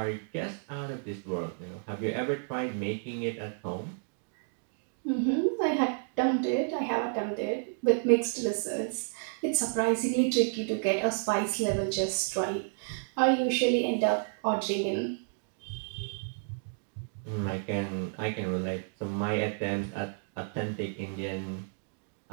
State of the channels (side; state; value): left; silent; digital silence